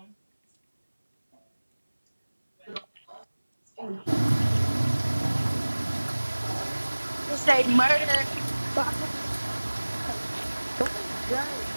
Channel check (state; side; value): inverted; both; correlation -1.00